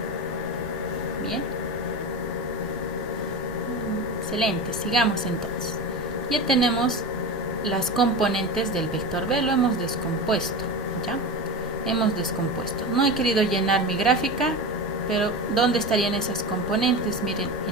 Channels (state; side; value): normal; both; correlation 0.25